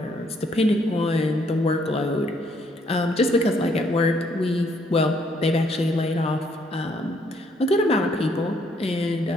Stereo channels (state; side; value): normal; both; correlation 0.68